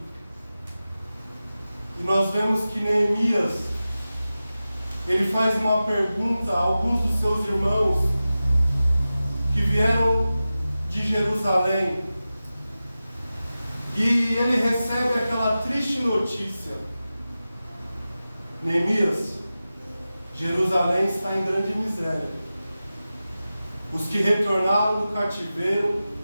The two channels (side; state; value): both; inverted; correlation -0.94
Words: E nós vemos que Neemias, ele faz uma pergunta a alguns dos seus irmãos que vieram de Jerusalém. E ele recebe aquela triste notícia: Neemias, Jerusalém está em grande miséria. Os que retornaram do cativeiro